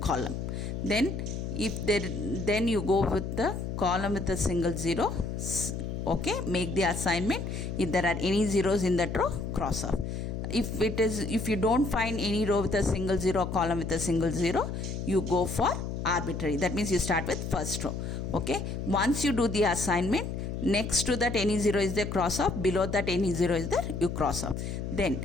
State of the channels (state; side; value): noise; left; hum, 4 dB below the sound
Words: column. Then then you go with the column with a single zero. Okay, make the assignment. If there are any zeros in that row, cross off. If you don't find any row with a single zero, column with a single zero, you go for arbitrary. That means you start with first row. Okay, once you do the assignment, next to that any zero is there, cross off. Below that any zero is there, you cross off. Then